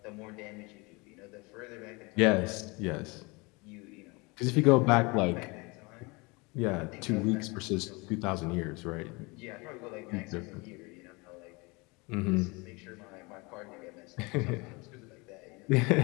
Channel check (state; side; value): quieter; right; 26.7 dB